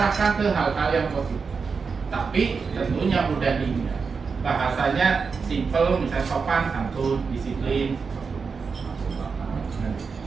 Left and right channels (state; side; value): quieter; left; 5.2 dB